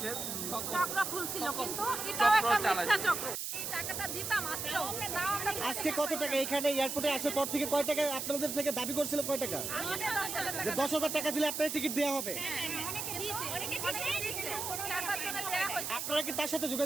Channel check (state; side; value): noise; right; hiss, 4 dB below the sound